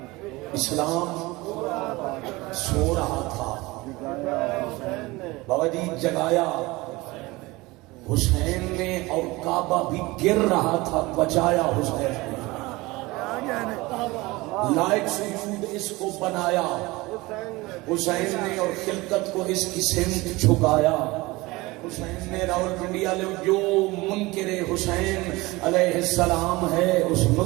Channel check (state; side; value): quieter; left; 21.7 dB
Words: اسلام سو رہا تھا بابا جی جگایا حسین نے. اور کعبہ بھی گر رہا تھا بچایا حسین نے. لائق سجود اس کو بنایا حسین نے اور خلقت کو اس کی سمت جھکایا حسین نے. راول پنڈی والے جو منکر حسین علیہ السلام ہے اس